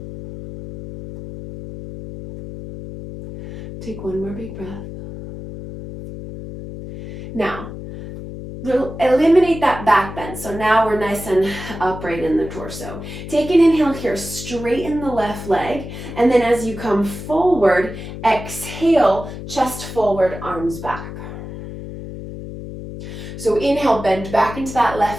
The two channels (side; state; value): left; noise; hum, 10 dB below the sound